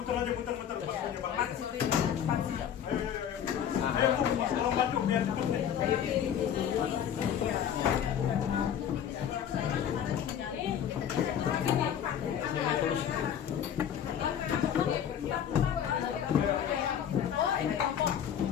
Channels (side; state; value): right; quieter; 9.2 dB